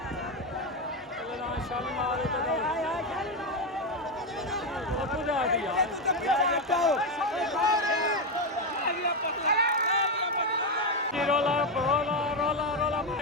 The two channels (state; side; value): normal; both; correlation 0.08